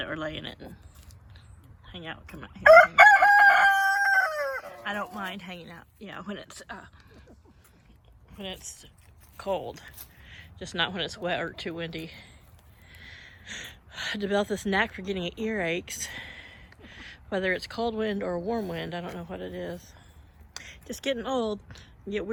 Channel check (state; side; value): identical; both; correlation 1.00